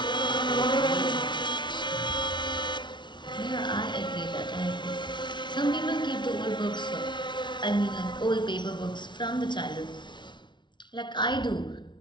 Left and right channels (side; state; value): right; late; 0.23 ms